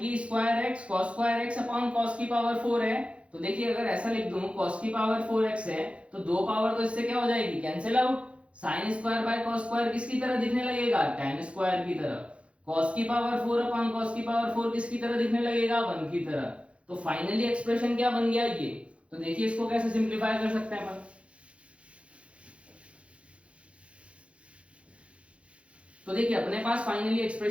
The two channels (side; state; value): left; late; 0.061 ms